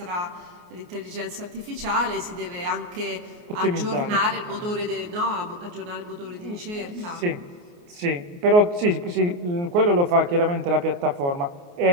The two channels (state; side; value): late; left; 28 ms